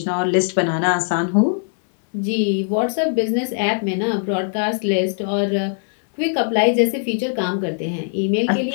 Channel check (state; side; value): silent; right; digital silence